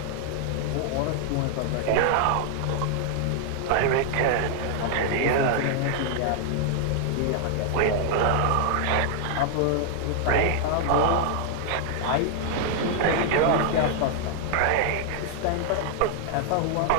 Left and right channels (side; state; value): both; different; correlation 0.00